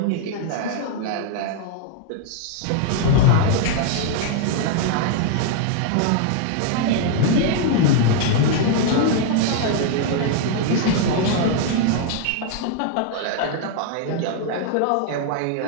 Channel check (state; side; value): different; both; correlation 0.00